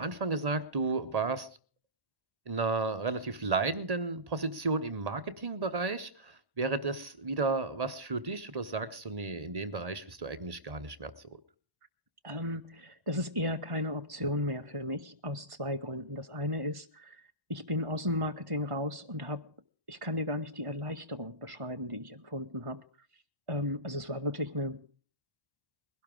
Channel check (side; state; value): left; late; 1.8 ms